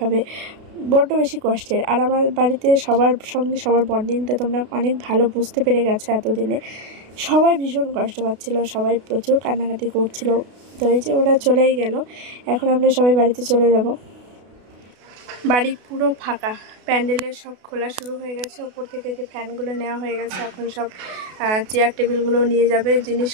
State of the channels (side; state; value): left; late; 32 ms